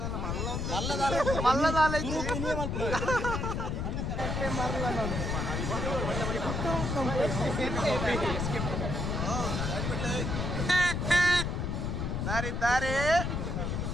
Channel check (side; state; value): left; noise; rumble, 1 dB below the sound